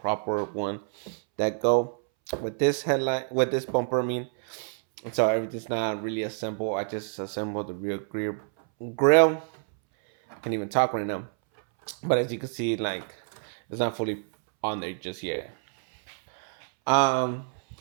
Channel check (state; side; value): silent; left; 60 dB below the other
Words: one that go with this headlight, with this bumper. I mean, so everything's not really assembled. I just assembled the rear grill. I can't even talk right now. But as you can see, it's not fully on there just yet.